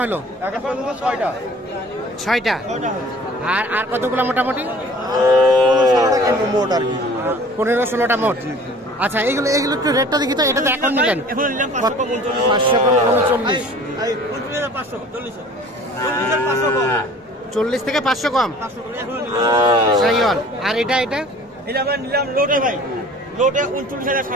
হলো? এখন পর্যন্ত 6টা। 6টা। আর আর কতগুলো মোটামুটি? 15-16টা মোট আর কি। 15-16টা মোট। আচ্ছা, এগুলো একটু রেটটা দেখি তো। এটা তো এখন নিলেন 539। 40 থেকে 500 কম শাহিওয়াল। আর এটা নিলাম লোটে ভাই, লোটে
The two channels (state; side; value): normal; both; correlation 0.48